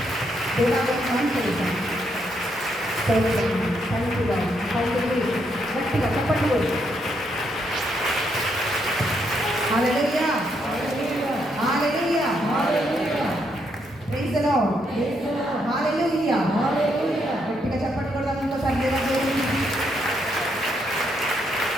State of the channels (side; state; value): both; normal; correlation 0.76